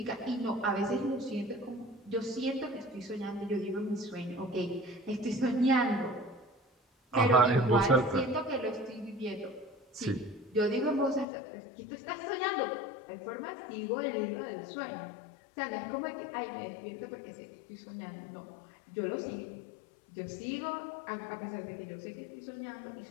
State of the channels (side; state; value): right; drops out; at 11.2 s